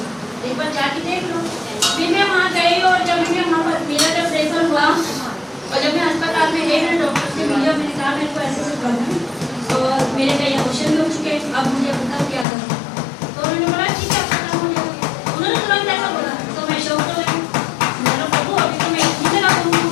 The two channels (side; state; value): right; drops out; at 12.5 s